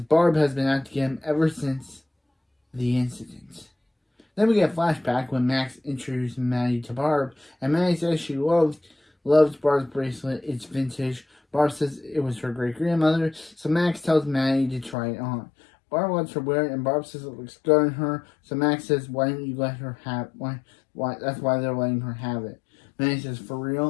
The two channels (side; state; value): right; drops out; at 15.0 s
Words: Barb has been out to get him ever since the incident. Then we get a flashback when Max introduces Maddie to Barb, and Maddie says she loves Barb's bracelet. It's vintage. Barb says it was her great-grandmother, so Max tells Maddie to try it on. Barb lets her wear it, and Barb says it looks good on her, so Max says, why don't you let her have why that's why they're letting her have it. Maddie says, for